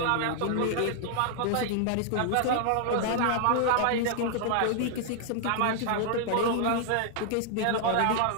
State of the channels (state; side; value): different; both; correlation 0.00